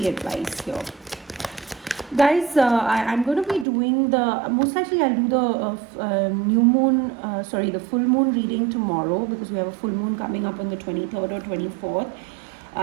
advice here? Guys, I'm going to be doing most likely I'll do the new moon, the full moon reading tomorrow, because we have a full moon coming up on the 23rd or 24th.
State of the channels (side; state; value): left; drops out; at 3.7 s